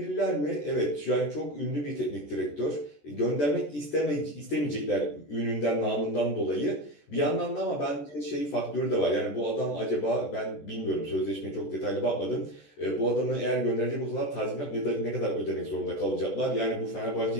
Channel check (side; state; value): right; late; 14 ms